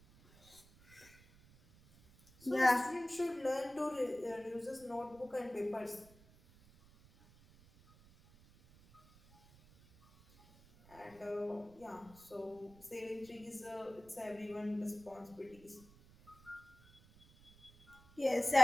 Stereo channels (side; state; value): right; noise; rumble, 26 dB below the sound